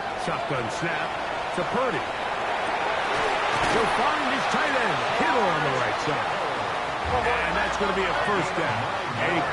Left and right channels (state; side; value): identical; both; correlation 1.00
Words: Shotgun snap to Purdy. He'll find his tight end, Kittle on the right side. And that's going to be a 1st down. A